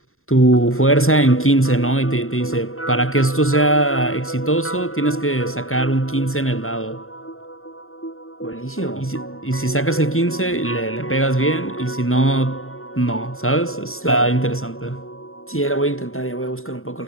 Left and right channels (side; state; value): right; late; 0.61 ms